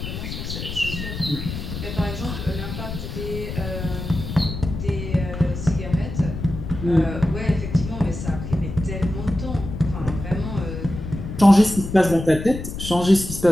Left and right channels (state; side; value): noise; left; rumble, 7 dB below the sound